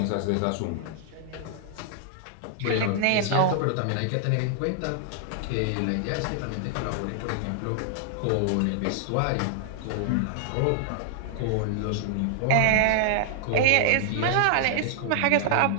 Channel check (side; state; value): both; different; correlation -0.01